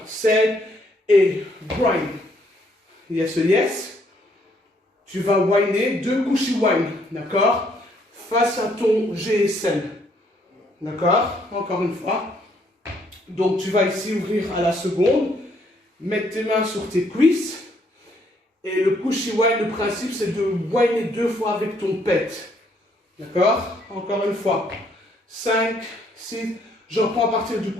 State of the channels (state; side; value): normal; both; correlation 0.68